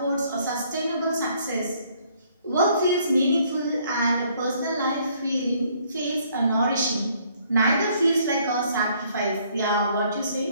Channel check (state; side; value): inverted; both; correlation -0.64